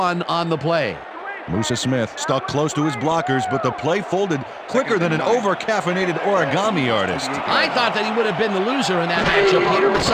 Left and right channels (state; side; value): identical; both; correlation 1.00